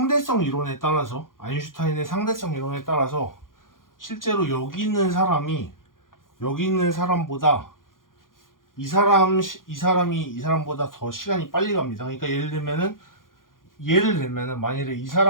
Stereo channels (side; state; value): right; late; 0.90 ms